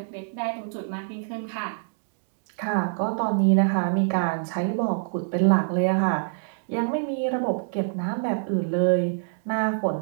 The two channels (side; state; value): left; silent; digital silence